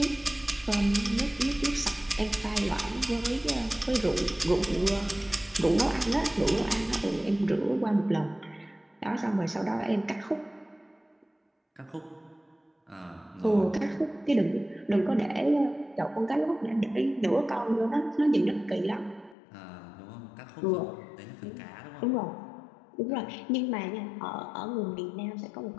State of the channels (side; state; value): right; drops out; at 19.4 s